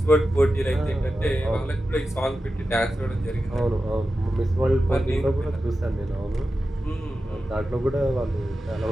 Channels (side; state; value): both; normal; correlation 0.92